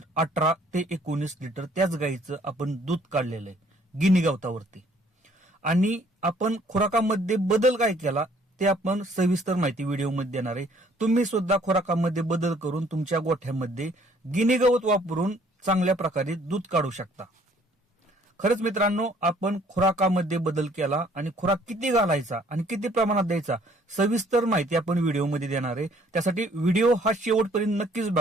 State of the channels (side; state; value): both; normal; correlation 0.61